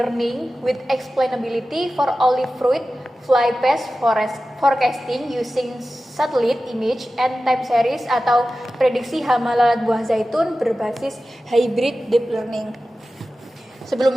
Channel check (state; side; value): normal; both; correlation 0.94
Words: with Explainability for Olive Fruit Fly Pest Forecasting Using Satellite Image and Time Series atau prediksi hama lalat buah zaitun berbasis Hybrid Deep Learning.